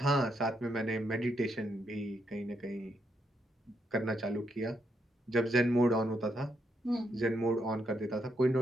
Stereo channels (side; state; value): both; normal; correlation 0.79